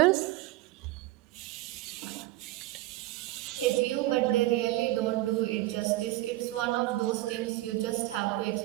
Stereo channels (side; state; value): left; quieter; 17.6 dB